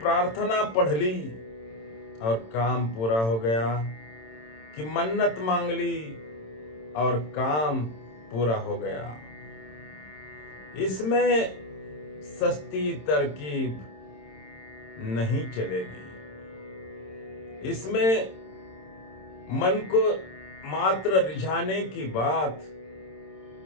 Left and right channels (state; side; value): late; right; 26 ms